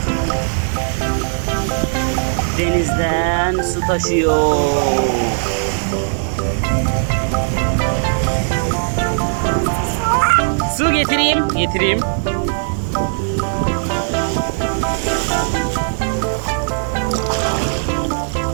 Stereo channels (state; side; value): silent; left; 67 dB below the other